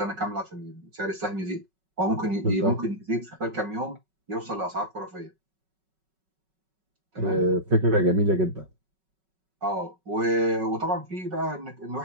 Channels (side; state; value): left; late; 5.3 ms